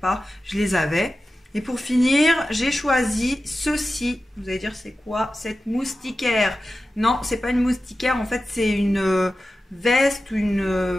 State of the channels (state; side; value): normal; both; correlation 0.94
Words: je les avais. Et pour finir, j'ai choisi ceci. Vous allez dire c'est quoi cette moustiquaire? Non, c'est pas une moustiquaire, en fait c'est une veste ou